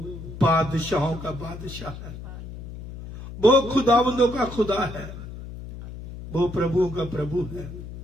बादशाहों का बादशाह है, वो खुदावंदों का खुदा है, वो प्रभुओं का प्रभु है।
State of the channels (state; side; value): noise; left; hum, 12 dB below the sound